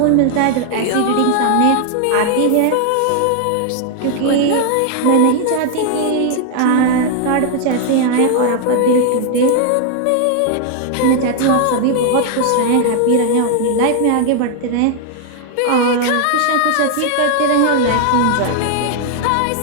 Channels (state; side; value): different; both; correlation 0.00